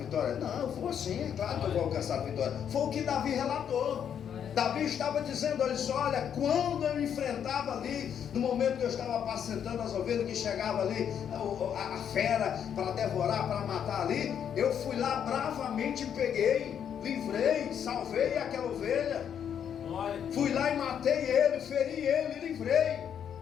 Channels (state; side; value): quieter; right; 8.6 dB